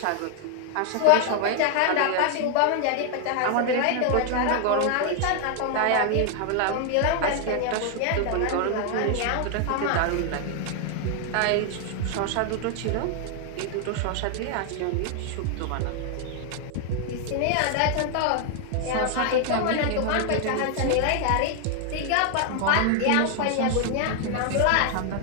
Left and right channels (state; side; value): different; both; correlation 0.00